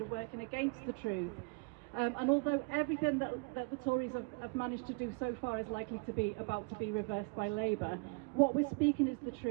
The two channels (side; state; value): left; quieter; 32.0 dB